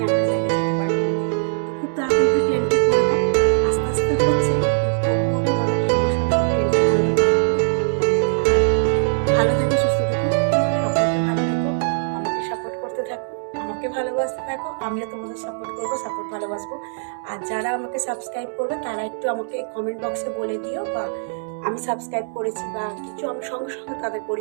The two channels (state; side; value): silent; left; 64 dB below the other